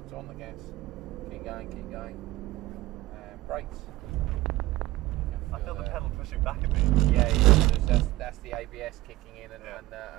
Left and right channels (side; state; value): left; quieter; 18.2 dB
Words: So on the gas. Keep going, keep going. And brakes. You can I feel the pedal pushing back at me. Yeah, yeah, that's the ABS kicking in and